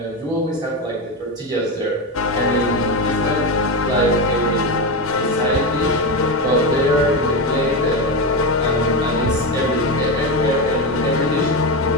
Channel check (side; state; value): both; normal; correlation 0.14